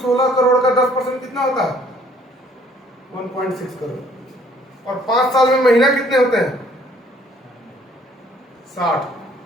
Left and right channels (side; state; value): both; normal; correlation 0.60